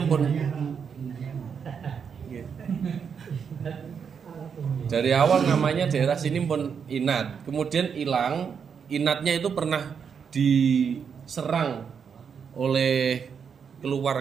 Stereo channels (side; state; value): left; quieter; 6.8 dB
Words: pun dari awal namanya daerah sini pun Inat. Kemudian hilang. Inatnya itu pernah diserang oleh